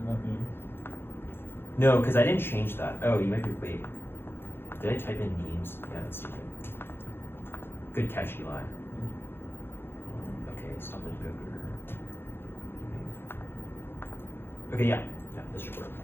not names? No, because I didn't change that. Oh, you might be, wait. Did I type in names? Yeah, that's stupid. Good catch, Eli. Okay, stop it, Google. Okay, yeah, this should work.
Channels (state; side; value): late; right; 0.11 ms